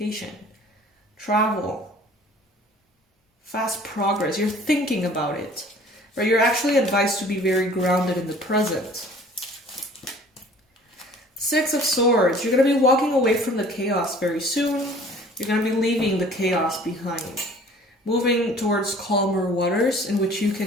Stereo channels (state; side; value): normal; both; correlation 0.50